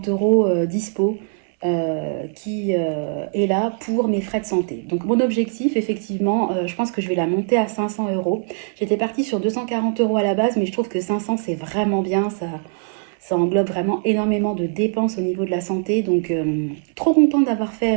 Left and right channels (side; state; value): left; silent; 58 dB below the other